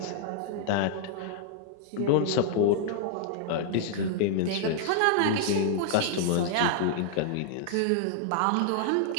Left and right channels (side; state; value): both; different; correlation -0.01